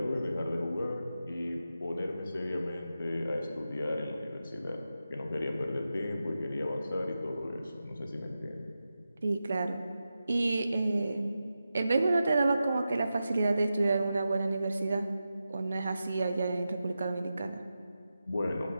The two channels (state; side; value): inverted; both; correlation -0.91